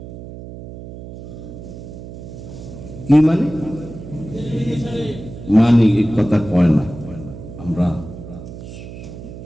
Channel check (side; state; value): right; noise; hum, 13 dB below the sound